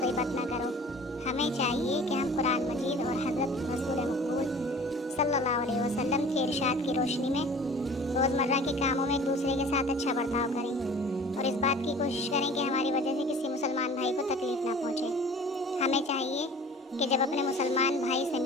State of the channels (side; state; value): both; normal; correlation 0.45